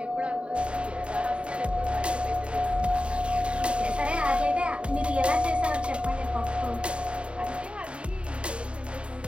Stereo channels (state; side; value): late; left; 0.057 ms